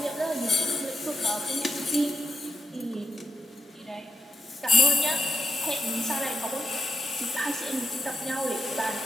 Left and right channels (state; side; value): normal; both; correlation 0.87